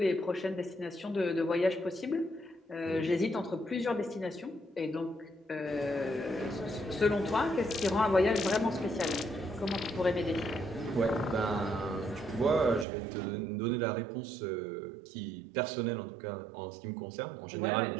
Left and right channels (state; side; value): drops out; left; at 12.9 s